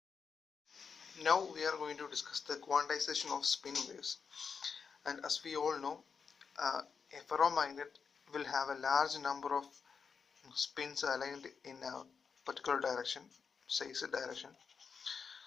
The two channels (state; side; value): quieter; right; 5.8 dB